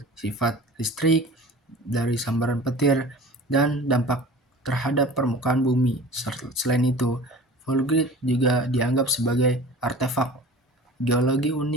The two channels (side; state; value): both; normal; correlation 0.40